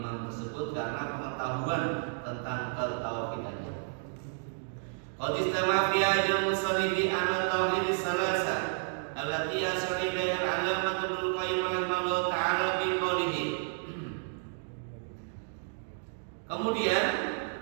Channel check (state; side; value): silent; left; digital silence